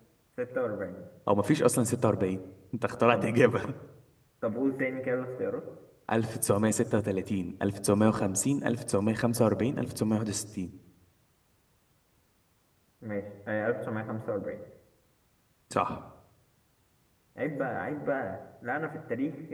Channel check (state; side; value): identical; both; correlation 1.00